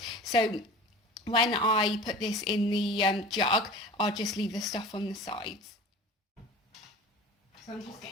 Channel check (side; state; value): both; normal; correlation 0.38